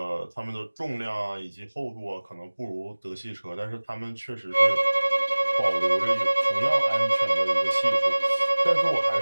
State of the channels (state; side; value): inverted; both; correlation -1.00